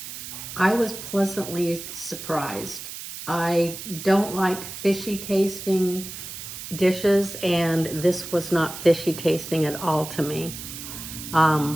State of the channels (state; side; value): noise; right; hiss, 10 dB below the sound